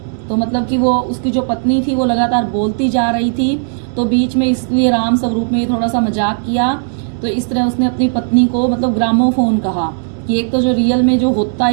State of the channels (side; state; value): left; silent; digital silence